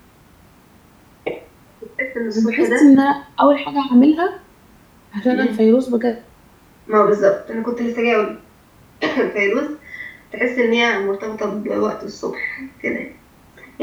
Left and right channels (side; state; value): both; identical; correlation 1.00